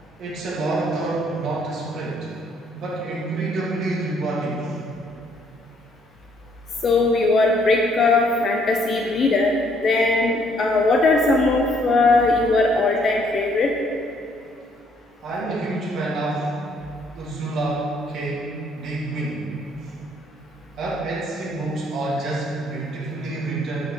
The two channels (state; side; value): normal; both; correlation 0.66